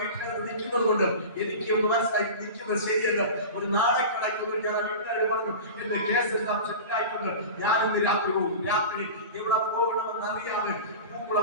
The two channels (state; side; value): inverted; both; correlation -0.31